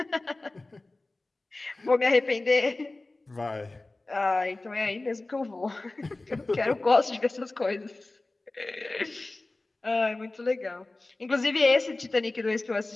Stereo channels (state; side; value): quieter; right; 3.0 dB